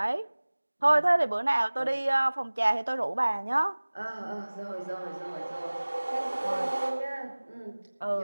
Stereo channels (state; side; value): inverted; both; correlation -1.00